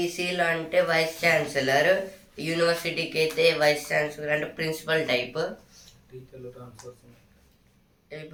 అంటే వైస్ ఛాన్సలర్. యూనివర్సిటీకి అయితే వైస్ ఛాన్సలర్ అంటే ప్రిన్సిపల్ టైప్.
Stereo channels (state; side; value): identical; both; correlation 1.00